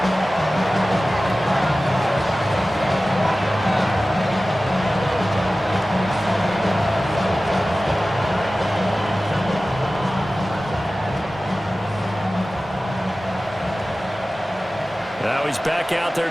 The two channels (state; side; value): normal; both; correlation 0.96